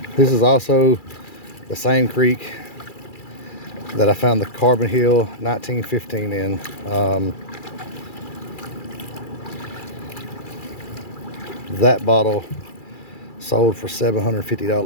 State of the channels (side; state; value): right; late; 2.3 ms